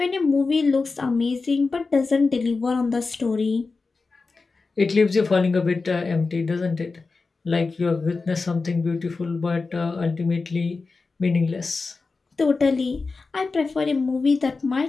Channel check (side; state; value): right; quieter; 4.1 dB